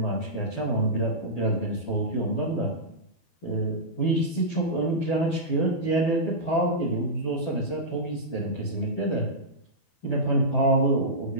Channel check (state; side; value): late; right; 12 ms